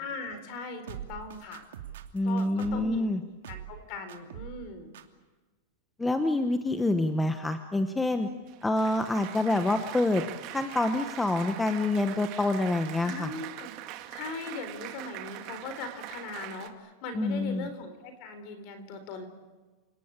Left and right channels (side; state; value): both; normal; correlation 0.77